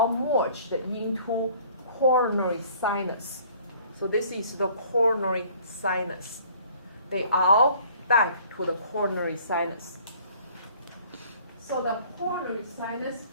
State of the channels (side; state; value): both; inverted; correlation -0.54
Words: merged into coronary sinus. So this is the coronary sinus. They all back to the coronary sinus. So the coronary sinus